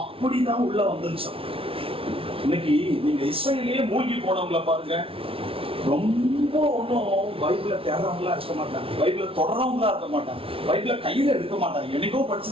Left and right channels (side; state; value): left; late; 0.26 ms